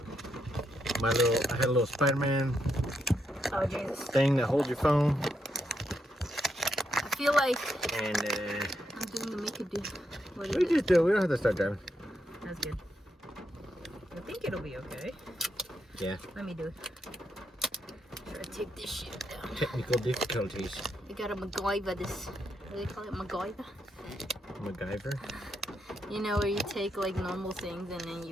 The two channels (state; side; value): normal; both; correlation 0.81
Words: I had a little Spider-Man thing that holds your phone. I feel like and I'm doing the make it do. We don't have to start driving. That's good. I think it'll be okay. Yeah. Let me do it. Try to take this shit down. Technical difficulties. I gotta MacGyver this. What do they call it? MacGyver? MacGyver? Where you take like normal things and then